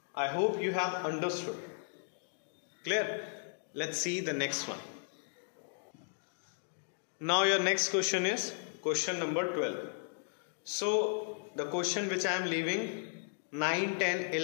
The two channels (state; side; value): silent; right; digital silence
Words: I hope you have understood. Clear? Let's see the next one. Now your next question is question number 12. So the question which I am leaving, 9, 10,